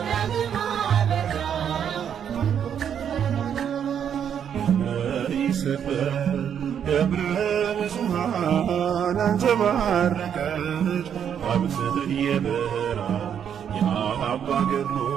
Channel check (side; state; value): left; quieter; 8.5 dB